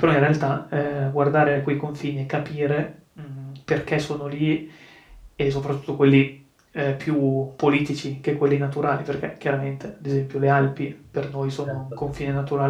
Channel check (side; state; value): both; identical; correlation 1.00